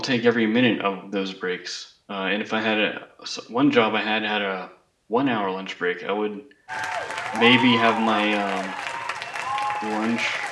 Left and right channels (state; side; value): identical; both; correlation 1.00